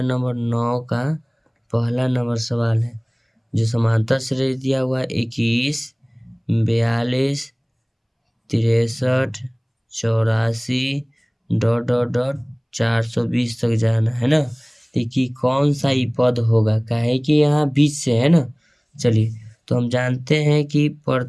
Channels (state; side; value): identical; both; correlation 1.00